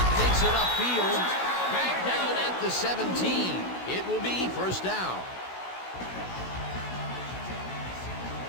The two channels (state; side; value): late; right; 16 ms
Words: takes it upfield. Back down at the 17. It will be 1st down.